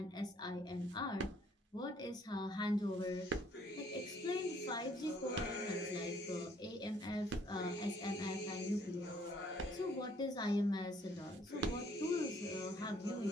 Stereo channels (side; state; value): both; normal; correlation 0.63